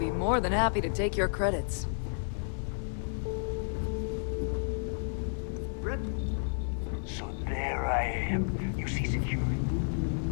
more than happy to take your credits. Rook? So there I am. You see security on my tail?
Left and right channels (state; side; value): silent; right; 57 dB below the other